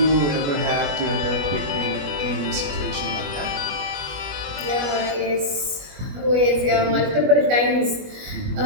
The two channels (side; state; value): left; late; 21 ms